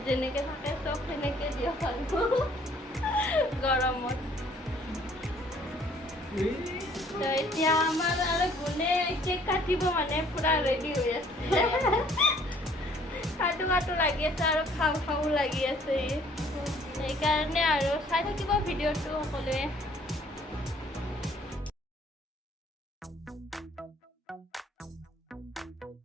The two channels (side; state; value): both; normal; correlation 0.59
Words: যেনেকৈ থাকে চব সেনেকৈ দিয়ক আৰু গৰমত তো এতিয়া আমাৰ আৰু গুণে কেক কাটিব মানে পুৰা ৰেডি হৈ আছে কাটো লাগি আছে আৰু খাওঁ লাগি আছে সেইকাৰণে আৰু চাই থাকিব ভিডিঅ'টো সকলোৱে